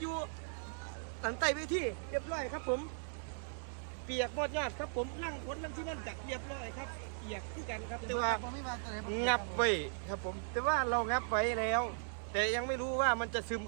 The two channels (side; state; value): left; silent; digital silence